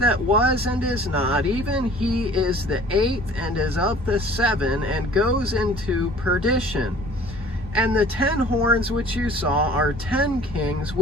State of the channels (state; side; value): normal; both; correlation 0.50